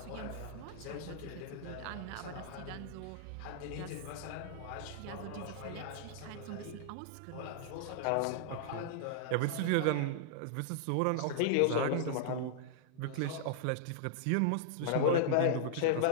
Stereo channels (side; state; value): both; different; correlation -0.01